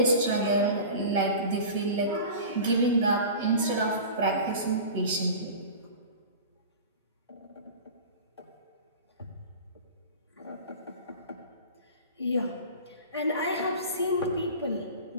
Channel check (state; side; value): inverted; both; correlation -0.35